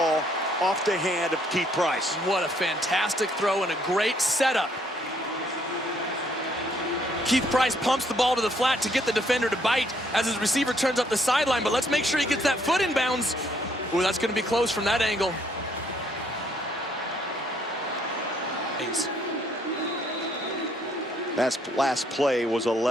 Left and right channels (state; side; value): normal; both; correlation 0.68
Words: off the hand of Keith Price. What a fantastic throw and a great setup. Keith Price pumps the ball to the flat to get the defender to bite as his receiver turns up the sideline, but let's make sure he gets that foot in bounds. Ooh, that's going to be close from that angle. That last play was